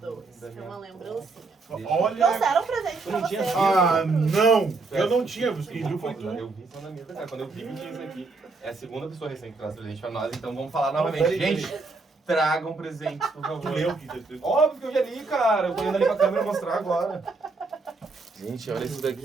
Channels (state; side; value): quieter; left; 3.8 dB